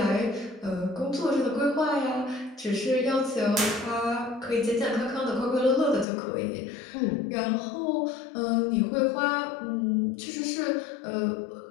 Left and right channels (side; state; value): right; drops out; at 6.1 s